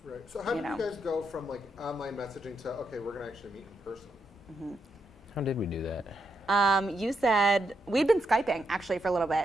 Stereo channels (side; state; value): both; normal; correlation 0.81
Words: Right. So how did you guys go from like online messaging to, okay, we're going to actually meet in person? How did we do that? You said we'd been Skyping actually for a little